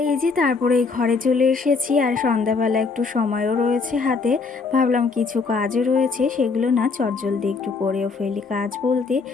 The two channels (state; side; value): quieter; right; 4.5 dB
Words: এই যে তারপরে এই ঘরে চলে এসেছি, আর সন্ধ্যাবেলা একটু সময়ও রয়েছে হাতে। ভাবলাম কিছু কাজও রয়েছে, সেগুলো না চটজলদি একটু করেও ফেলি। কাজ বলতে